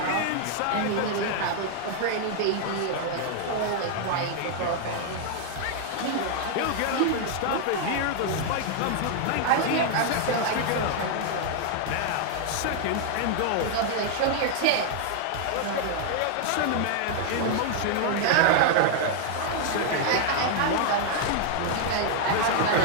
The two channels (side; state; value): both; different; correlation 0.00